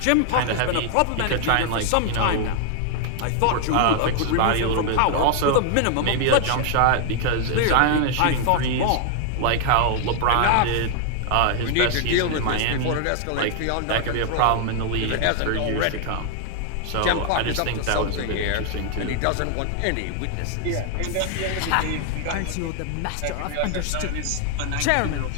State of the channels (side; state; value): both; different; correlation 0.00